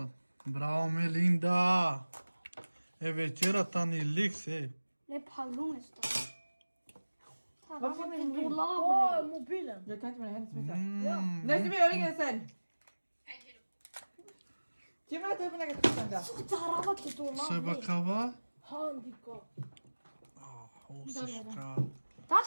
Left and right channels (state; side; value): inverted; both; correlation -1.00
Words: Bravo Melinda. E večera ta ni liks, Ne paglu mesta. Varför vill du Åh, mobilen. Jag kan inte med henne smita. Mm. Nej, ska vi göra det sen? Kim äter upp en egen tusen. Tarava till dolabı. Söyle bakava. Handika. Hosishka.